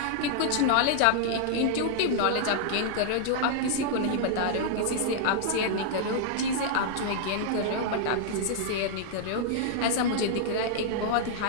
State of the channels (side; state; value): both; different; correlation -0.01